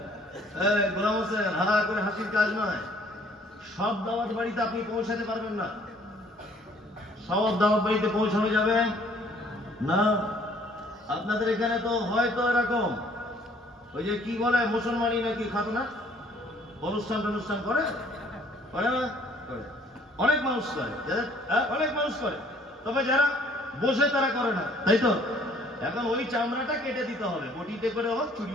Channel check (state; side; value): normal; both; correlation 0.59